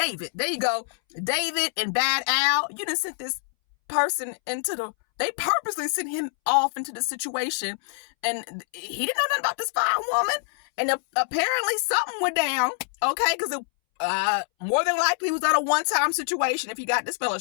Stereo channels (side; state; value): right; silent; 61 dB below the other